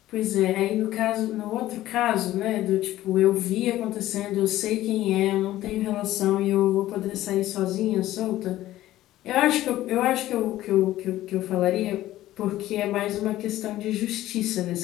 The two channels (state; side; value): quieter; right; 14.8 dB